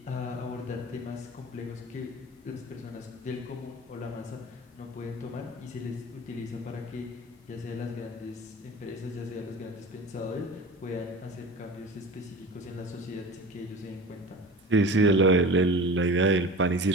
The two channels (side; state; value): both; normal; correlation 0.36